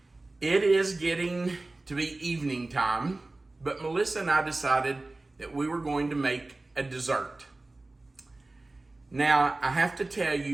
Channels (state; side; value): quieter; left; 3.0 dB